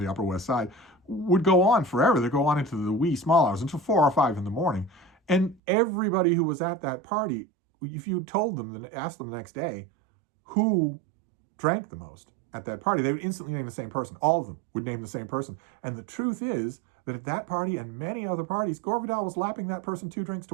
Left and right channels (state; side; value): drops out; left; at 5.6 s